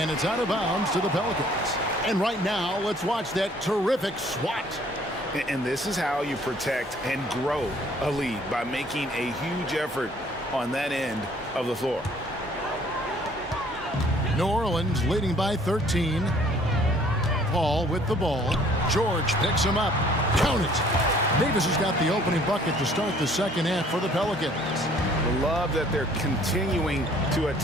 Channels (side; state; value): both; normal; correlation 0.58